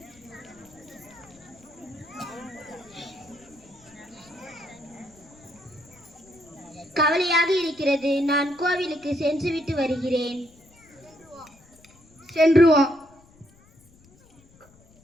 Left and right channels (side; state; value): left; noise; rumble, 28 dB below the sound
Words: கவலையாக இருக்கிறது. நான் கோவிலுக்கு சென்றுவிட்டு வருகிறேன். சென்று வா.